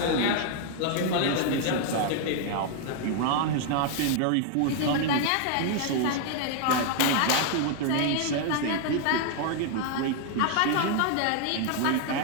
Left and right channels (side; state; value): both; different; correlation 0.00